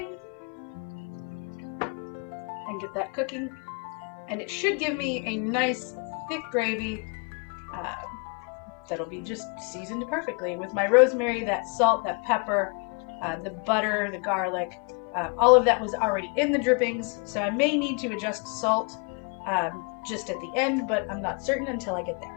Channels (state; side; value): quieter; right; 36.4 dB